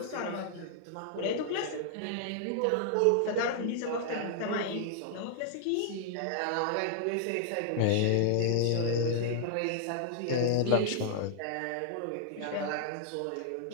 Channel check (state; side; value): different; both; correlation -0.01